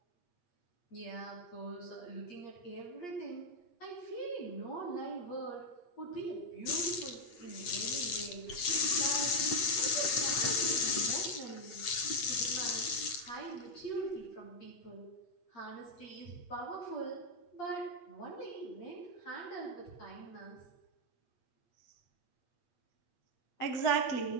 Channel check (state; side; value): late; right; 8.7 ms